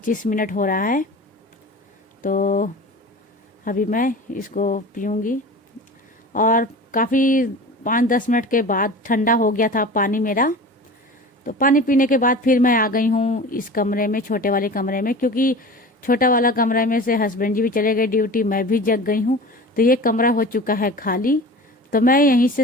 हो रहा है। तो अभी मैं इसको पीऊँगी। और काफ़ी 5-10 मिनट के बाद ठंडा हो गया था पानी मेरा। तो पानी पीने के बाद फिर मैं आ गई हूँ इस कमरे में, छोटे वाले कमरे में, क्योंकि छोटा वाला कमरा में से हस्बैंड जी भी चले गए ड्यूटी, मैं भी जग गई हूँ। तो ये कमरा हो चुका है खाली। तो मैं यहीं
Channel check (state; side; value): normal; both; correlation 0.36